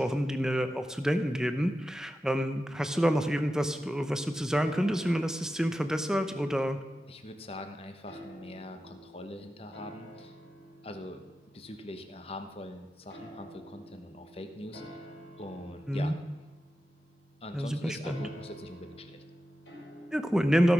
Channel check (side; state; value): both; normal; correlation 0.92